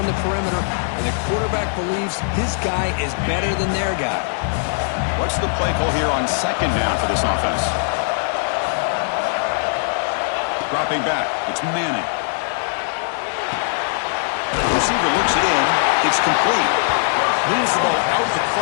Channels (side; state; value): right; silent; digital silence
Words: the perimeter. And the quarterback believes his guy is better than their guy. What's the play call here on 2nd down for this offense? Dropping back. It's Manning. The receiver looks it in. It's complete. Moves the ball out